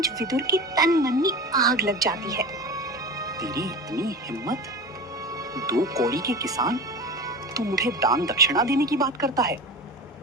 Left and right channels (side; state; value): both; normal; correlation 0.31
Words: विदुर के तन मन में आग लग जाती है। तेरी इतनी हिम्मत? 2 कौड़ी के किसान, तू मुझे दान दक्षिणा देने की बात करता है?